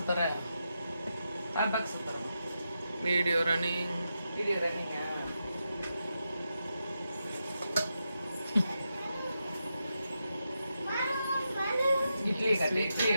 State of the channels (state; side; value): inverted; both; correlation -0.87